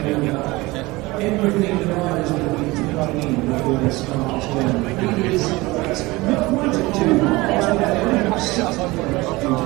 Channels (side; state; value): left; quieter; 21.7 dB